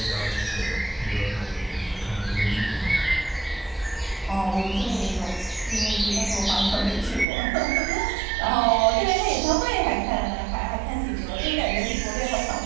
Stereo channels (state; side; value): drops out; left; at 7.2 s